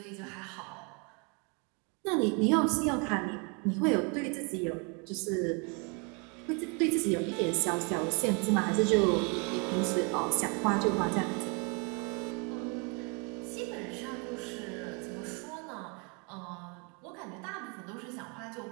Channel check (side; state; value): left; quieter; 33.7 dB